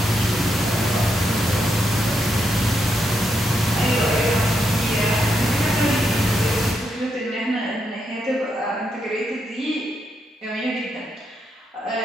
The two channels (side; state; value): both; normal; correlation 0.81